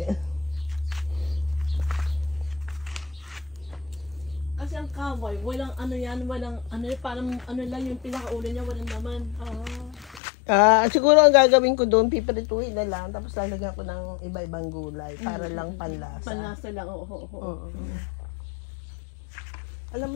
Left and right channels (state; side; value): drops out; right; at 10.2 s